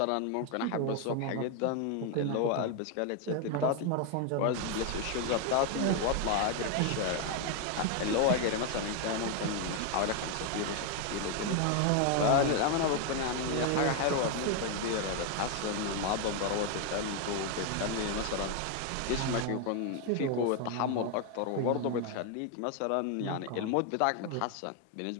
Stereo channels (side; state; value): both; different; correlation 0.01